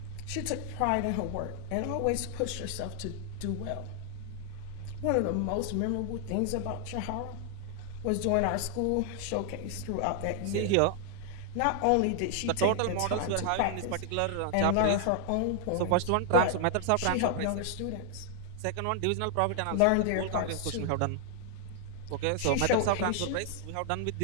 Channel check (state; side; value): different; both; correlation 0.00